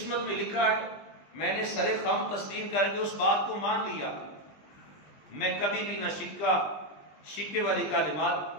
میں لکھا ہے میں نے سر خم تسلیم کر کے اس بات کو مان لیا، میں کبھی بھی نہ شکوے والی کلمات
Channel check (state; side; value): late; right; 20 ms